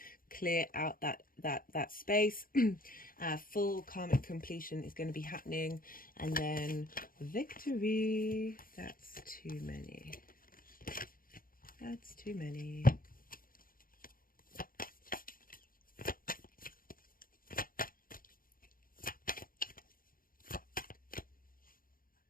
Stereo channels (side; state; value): right; late; 0.41 ms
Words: clear out that space. Full karmic completion is going to be happening, and then victory. That's too many. That's too many.